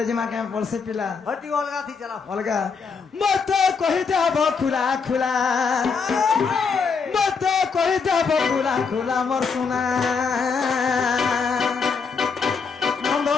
के पड़से पिला हटी अलगा थी चला अलगा मत कहि देब खुला खुला मत कहि देब खुला खुला मोर सुना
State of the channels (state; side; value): quieter; right; 5.4 dB